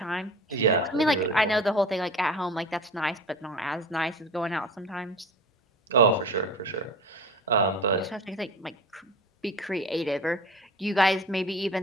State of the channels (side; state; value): both; normal; correlation 0.36